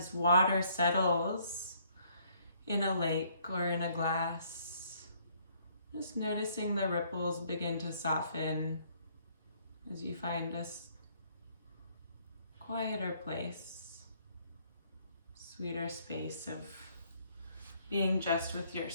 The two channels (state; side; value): inverted; both; correlation -0.65